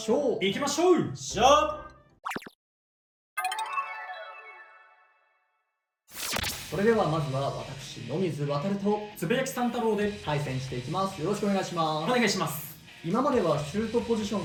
ょう。行きましょう。しゃそれではまずは私野水航とつぶやきさん太郎で対戦していきます。よろしくお願いします。お願いします。今まではシュートポジショ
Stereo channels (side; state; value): both; identical; correlation 1.00